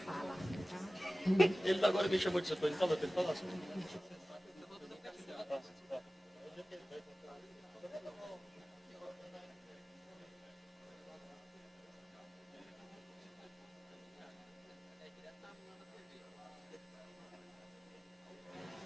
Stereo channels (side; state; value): both; normal; correlation 0.97